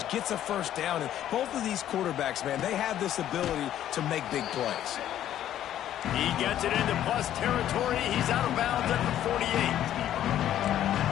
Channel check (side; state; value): right; quieter; 11.6 dB